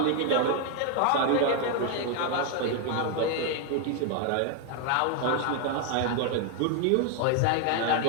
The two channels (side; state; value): both; different; correlation 0.01